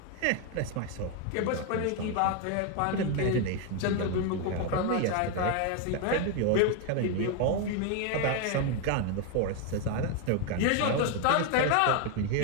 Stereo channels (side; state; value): both; different; correlation 0.01